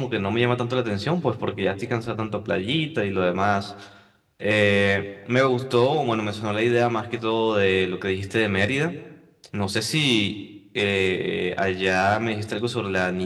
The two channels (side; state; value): both; identical; correlation 1.00